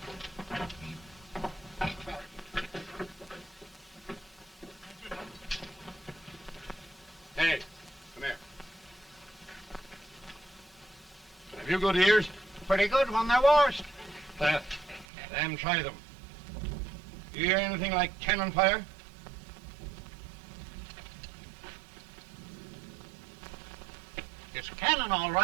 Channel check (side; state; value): left; drops out; at 15.1 s